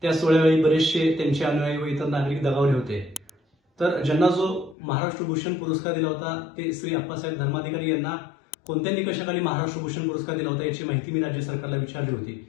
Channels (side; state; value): right; drops out; at 4.8 s